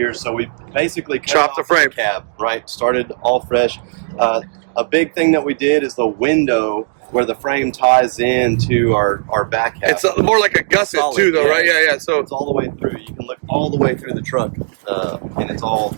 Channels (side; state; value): left; silent; digital silence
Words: so we basically chopped the frame cab, right? Started all fresh. A big thing that we did is the window where the frame ties into our back half. It's more like a gusset too, though, right? Yeah. So it's all the way through. You can look all the way through the truck, and it's all